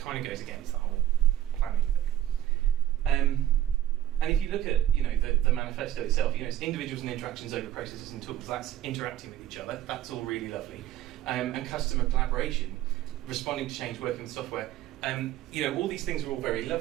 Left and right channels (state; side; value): quieter; left; 12.6 dB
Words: of goes against the whole planning thing. And if you look at the manifesto itself, it's individuals and interactions over processes and tools. That's interacting with each other. That's all really lovely. And customer collaboration, responding to change, working with software. All these things are all very